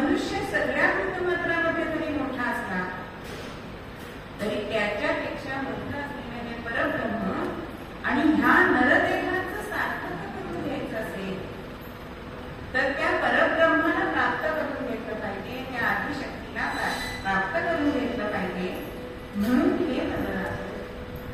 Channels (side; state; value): both; identical; correlation 1.00